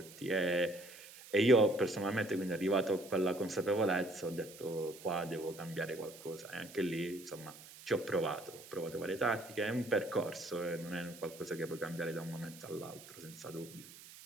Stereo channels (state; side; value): noise; right; hiss, 17 dB below the sound